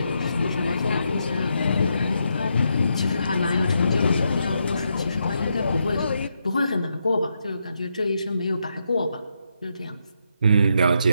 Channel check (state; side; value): inverted; both; correlation -0.81